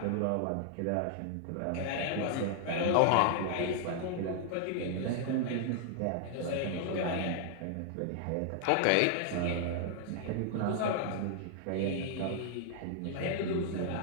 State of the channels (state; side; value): different; both; correlation 0.00